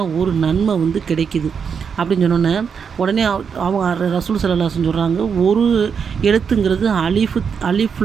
ஒரு நன்மை கிடைக்குது அப்படின்னு சொன்னோன்னே உடனே அவங்க ரசூல் ஸல்லல்லாஹு அலைஹி வஸல்லம் சொல்கிறாங்க, ஒரு எழுத்துங்கிறது அலிஃப்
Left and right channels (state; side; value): quieter; left; 6.5 dB